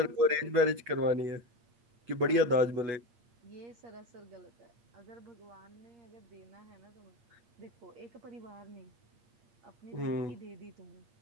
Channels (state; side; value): late; left; 8.2 ms